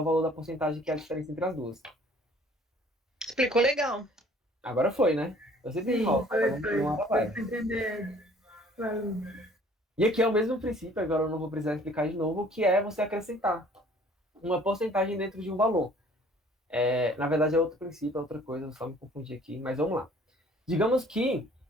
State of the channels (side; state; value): both; normal; correlation 0.54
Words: valor da porcentagem, que é a diferença entre as duas. Explicou legal. Agora foi, né? Eu sempre enrolo. Uma hora vai. Entender. E aqui é o mesmo princípio, agora eu não vou precisar explicar de novo, que é você acrescentar uma porcentagem dentro de um valor. Na verdade, é outro princípio, é outra coisa, eu só me confundi aqui, mas vamos lá. Digamos que